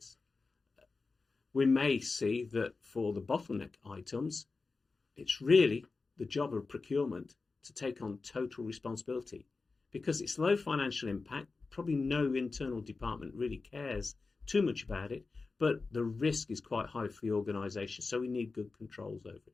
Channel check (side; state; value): right; quieter; 4.0 dB